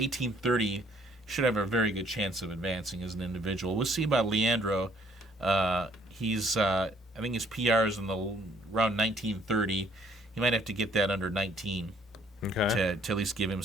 he should have a very good chance of advancing as an individual. We'll see about Leandro. I think his PR is in the around 19:30. He might have to get that under 19 Okay. to at least give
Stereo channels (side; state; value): both; normal; correlation 0.62